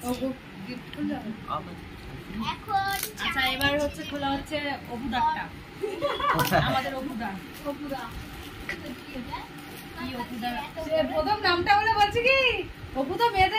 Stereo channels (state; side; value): identical; both; correlation 1.00